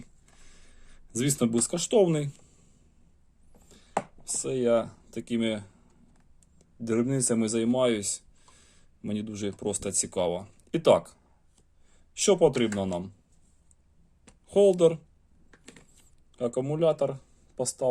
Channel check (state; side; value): identical; both; correlation 1.00